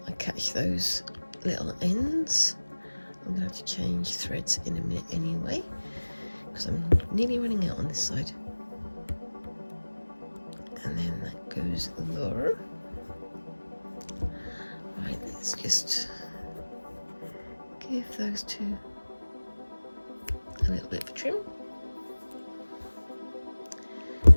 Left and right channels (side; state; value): both; inverted; correlation -1.00